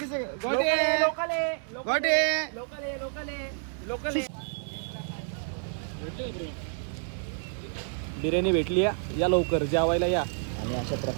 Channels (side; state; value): left; silent; 59 dB below the other